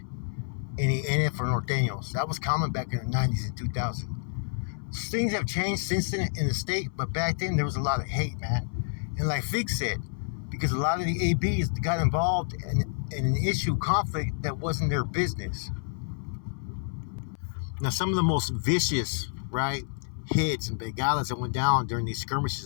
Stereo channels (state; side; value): silent; right; 59 dB below the other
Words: any NF or Norteños. That was common back in the 90s and 2000s. Things have changed since then in the state, but back then there was a lot of hate, man. And like Fig said, because a lot of the ABs got involved in an issue, conflict that wasn't their business. Now, some of the most vicious, right, hits and bengalas that went down during these